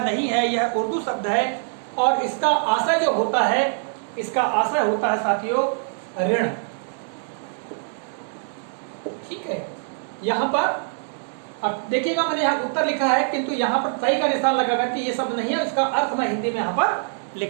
नहीं है, यह उर्दू शब्द है और इसका आशय जो होता है, इसका आशय होता है साथियों ऋण। ठीक है, यहाँ पर अब देखिएगा मैंने यहाँ उत्तर लिखा है किंतु यहाँ पर सही का निशान लगाकर कि ये शब्द नहीं है, इसका अर्थ मैं हिंदी में यहाँ पर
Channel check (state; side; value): silent; left; 63 dB below the other